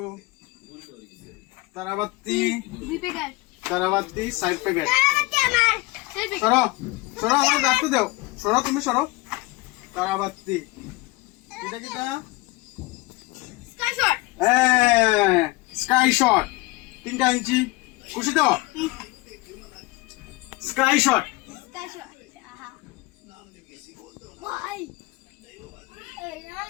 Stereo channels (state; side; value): quieter; right; 22.2 dB